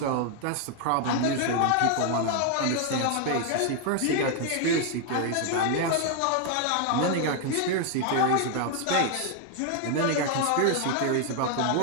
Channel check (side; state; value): both; different; correlation 0.00